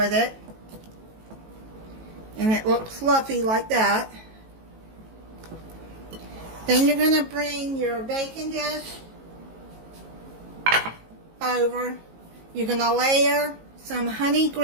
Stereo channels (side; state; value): left; late; 18 ms